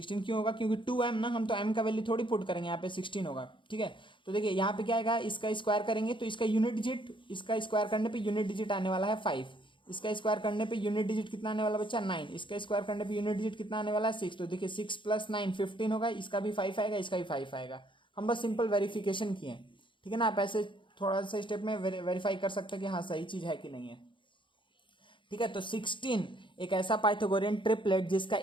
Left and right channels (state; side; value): late; right; 0.24 ms